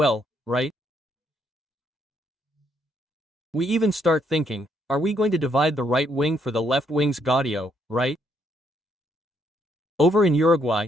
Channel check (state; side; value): normal; both; correlation 0.73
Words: right? We even start thinking, are we going to divide the right wing for the left wing's Gaudio, right? Over in Uruguay,